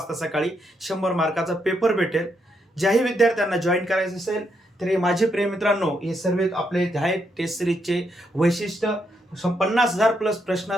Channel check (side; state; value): both; normal; correlation 0.79